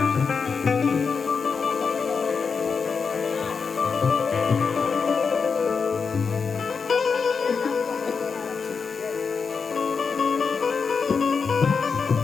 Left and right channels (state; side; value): quieter; right; 5.4 dB